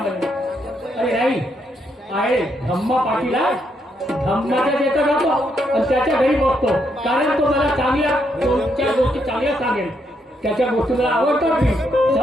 अरे नाही आहे धम्मा पाटील आहे. धम्माच्या तिथं जातो आणि त्याच्या घरी बसतो कारण तो मला चांगल्या दोन चार गोष्टी चांगल्या सांगेल. त्याच्या गोष्टी मला आवडतात मी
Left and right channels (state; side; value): normal; both; correlation 0.77